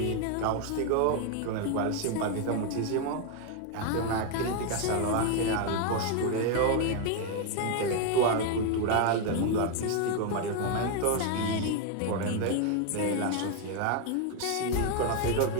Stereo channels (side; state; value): both; different; correlation 0.01